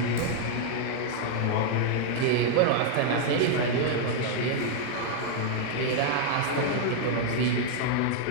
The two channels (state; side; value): different; both; correlation 0.00